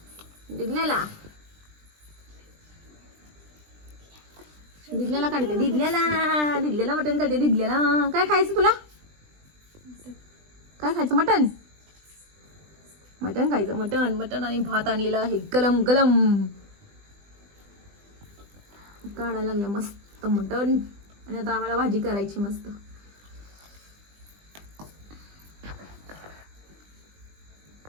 दिदल्याला. दिदल्याला काढते. दिदल्याला मटण काढते. दिदल्याला काय खायचं तुला? काय खायचं? मटण. मटण खायचं. मटण मटण आणि भात आणलेला आहे गलम गलम. काढायला लागलं मस्त मटण. आणि आता आम्हाला भाजी करायची मस्त.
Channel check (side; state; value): left; late; 20 ms